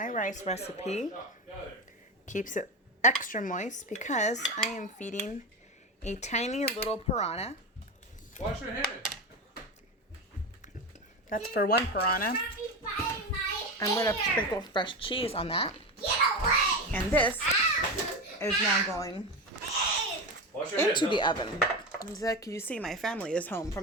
rice recipe. Stop. Got it. Keeps it extra moist because I am feeding a tiny little piranha. Wash your hands. That's for one piranha. Don't be biting my I'm going to hair. sprinkle fresh cheese on that. Get away. And this Ow. is now going Wash your hands. into the huh? oven. As you see, my family is home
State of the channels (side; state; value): both; normal; correlation 0.20